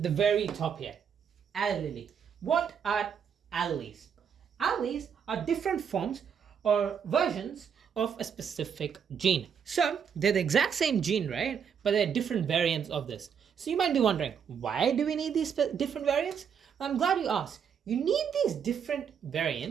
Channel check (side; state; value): left; quieter; 7.4 dB